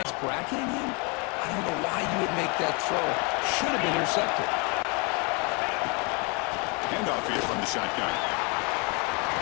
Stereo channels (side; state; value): right; quieter; 31.7 dB